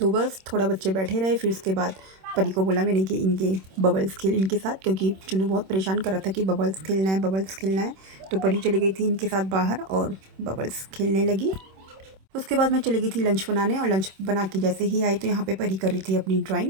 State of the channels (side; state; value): left; late; 26 ms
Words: बस थोड़ा बच्चे बैठे रहे, फिर उसके बाद परी को बोला मैंने कि इनके बबल्स खेल इनके साथ, क्योंकि चुन्नू बहुत परेशान कर रहा था कि बबल्स खेलना है, बबल्स खेलना है। तो परी चली गई थी इनके साथ बाहर और बबल्स खेलने लगी। उसके बाद मैं चली गई थी लंच बनाने, और लंच बना के जैसे ही आई तो यहाँ पे परी कर रही थी अपनी